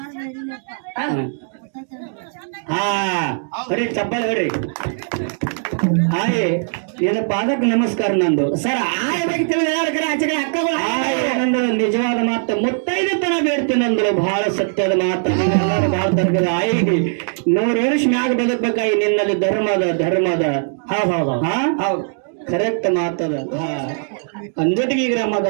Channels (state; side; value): silent; left; digital silence